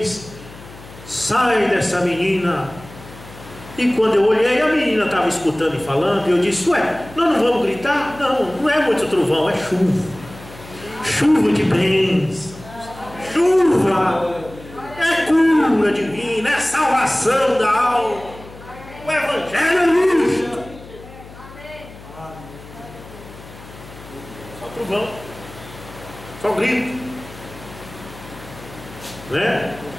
sai dessa menina. E quando eu olhei, a menina estava escutando e falando, e eu disse: ué, nós não vamos gritar? Não, não é muito trovão, é chuva. Chuva de bênçãos, chuva, é cura divina, é salvação da alma. O Evangelho é isto. Só trovão, só grito, né?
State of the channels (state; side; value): noise; left; hum, 18 dB below the sound